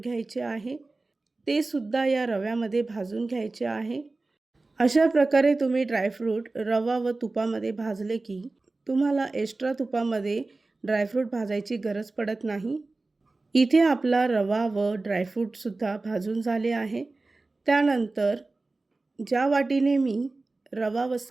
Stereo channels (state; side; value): quieter; left; 3.3 dB